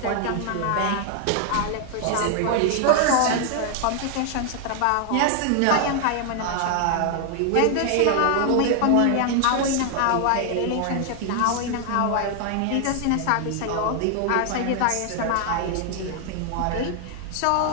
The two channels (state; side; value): different; both; correlation 0.00